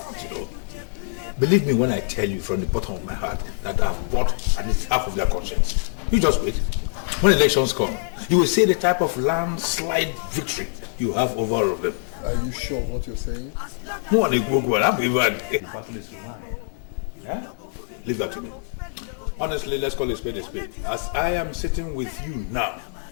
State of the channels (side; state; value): right; silent; digital silence